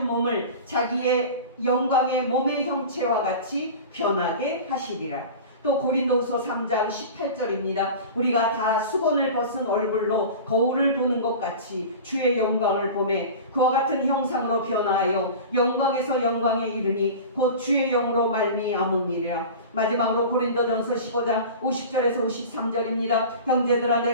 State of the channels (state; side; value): inverted; both; correlation -0.34